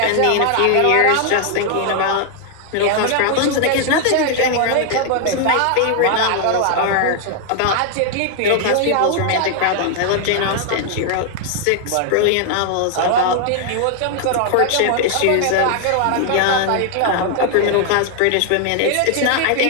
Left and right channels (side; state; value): both; different; correlation 0.00